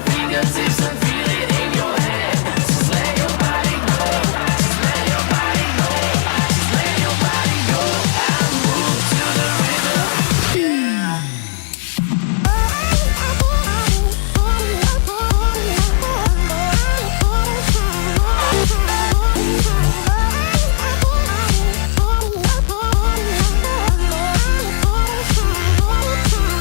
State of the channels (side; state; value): right; silent; digital silence